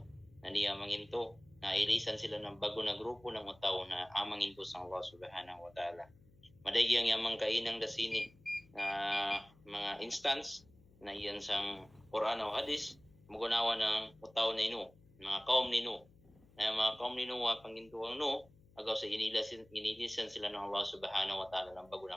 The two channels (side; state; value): left; noise; hum, 27 dB below the sound